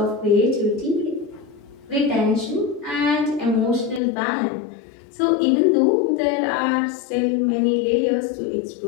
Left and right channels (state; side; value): drops out; right; at 4.0 s